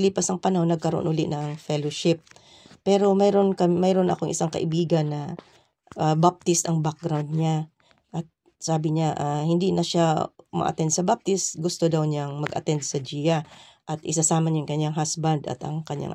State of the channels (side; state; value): both; identical; correlation 1.00